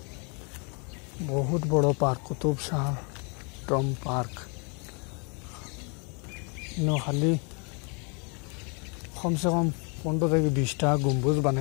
বহুত বড় park Qutub Shah tomb park খালি কমসে কম 15 থেকে 20টা গম্বুজ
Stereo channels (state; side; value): quieter; right; 35.3 dB